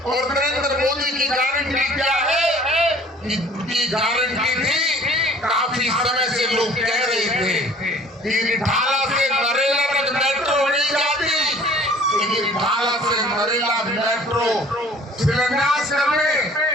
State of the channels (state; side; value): normal; both; correlation 0.51